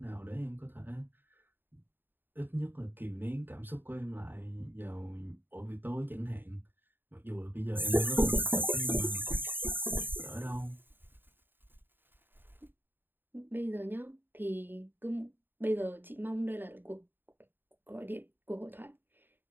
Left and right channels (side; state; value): left; late; 0.095 ms